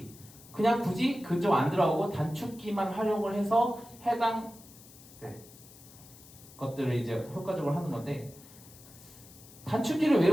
그냥 굳이 그쪽 안 들어가고 단축키만 활용을 해서 해당 것들을 이제 효과적으로 하는 건데, 단축키를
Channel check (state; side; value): noise; left; hiss, 21 dB below the sound